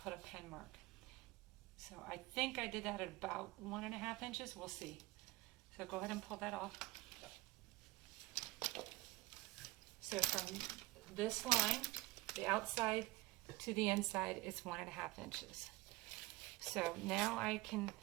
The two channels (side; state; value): left; quieter; 19.4 dB